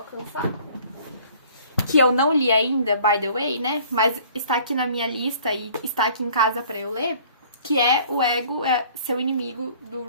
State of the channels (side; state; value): both; inverted; correlation -0.53